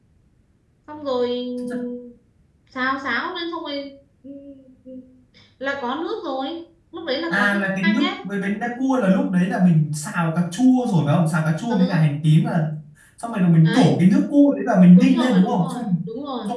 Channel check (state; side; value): identical; both; correlation 1.00